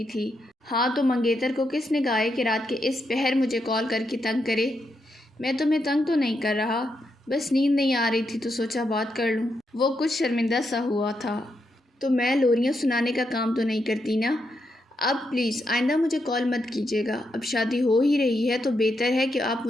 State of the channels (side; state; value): both; normal; correlation 0.82